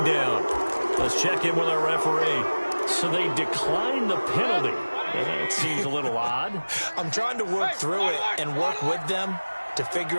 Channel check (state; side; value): inverted; both; correlation -1.00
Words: down. Let's check in with our referee. So they declined the penalty. It seems a little odd. I'm trying to work through it and work with them to figure